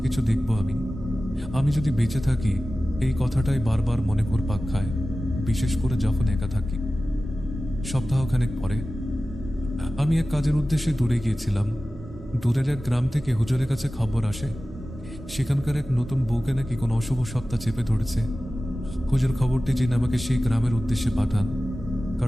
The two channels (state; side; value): normal; both; correlation 0.96